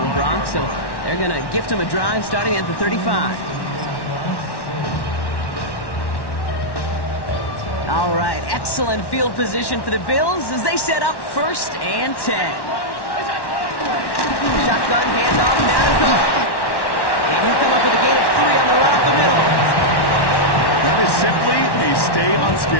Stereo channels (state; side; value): late; right; 1.1 ms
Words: Brock. So they're going to gift him a drive starting at the 35. All right, excellent field position for the Bills as they set up 1st and 10. Shotgun handoff now to Cook. And he'll come up with a gain of 3 on the run up the middle. That is simply a